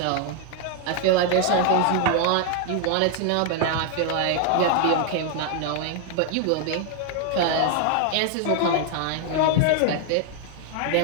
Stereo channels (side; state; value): both; different; correlation 0.00